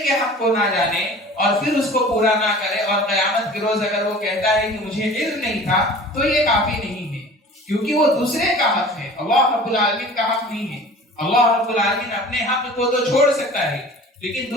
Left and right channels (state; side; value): normal; both; correlation 0.43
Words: کے حق کو نہ جانے اور پھر اس کو پورا نہ کرے اور قیامت کے روز اگر وہ کہتا ہے کہ مجھے علم نہیں تھا تو یہ کافی نہیں ہے، کیونکہ وہ دوسرے کا حق ہے، اللہ رب العالمین کا حق نہیں ہے۔ اللہ رب العالمین اپنے حق کو تو چھوڑ سکتا ہے، لیکن